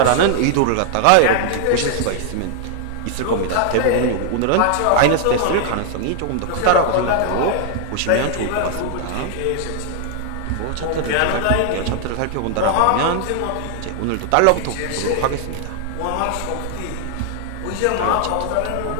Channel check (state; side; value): different; both; correlation 0.00